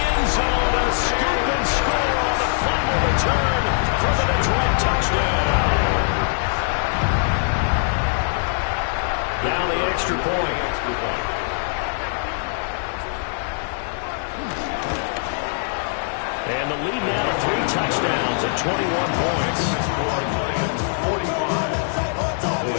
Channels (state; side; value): silent; right; digital silence